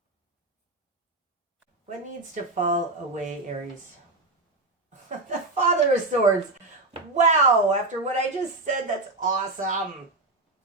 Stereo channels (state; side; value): quieter; left; 3.0 dB